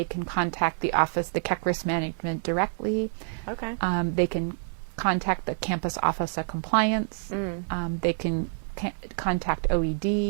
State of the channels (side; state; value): left; silent; digital silence